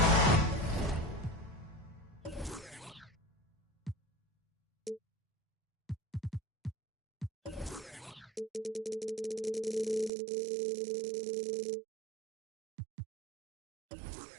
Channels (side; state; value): left; drops out; at 10.1 s